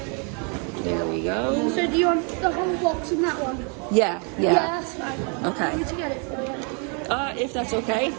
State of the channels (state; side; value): quieter; left; 37.3 dB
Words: there we go. So do you want the whole box in that one? Yeah. Yeah, that's fine. Okay. I need to get it for you. If that's okay.